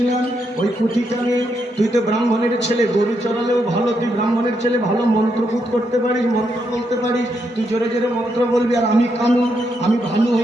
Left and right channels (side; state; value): both; normal; correlation 0.80